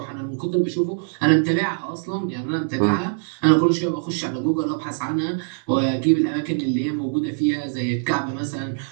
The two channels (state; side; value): silent; left; 64 dB below the other